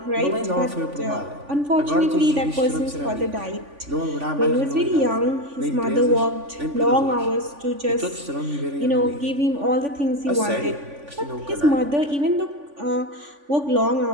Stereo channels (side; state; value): left; late; 3.5 ms